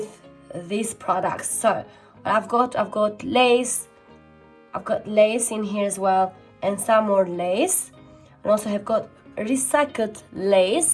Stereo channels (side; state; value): both; identical; correlation 1.00